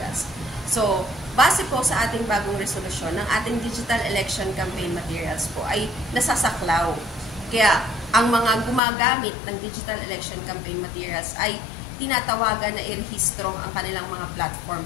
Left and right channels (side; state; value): right; drops out; at 8.8 s